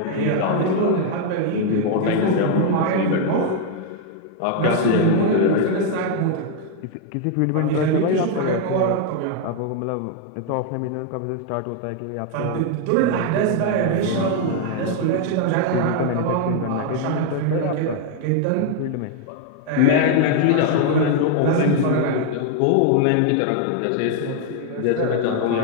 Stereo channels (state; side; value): different; both; correlation 0.00